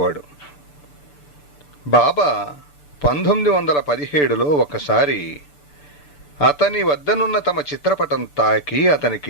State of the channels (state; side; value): late; right; 6.8 ms